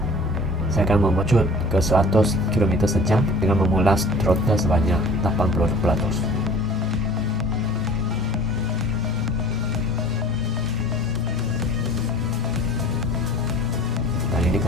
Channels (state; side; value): normal; both; correlation 0.47